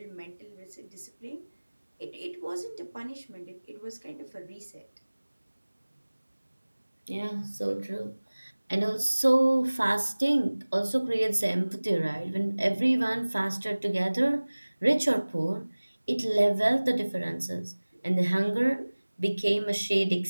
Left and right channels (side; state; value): both; inverted; correlation -1.00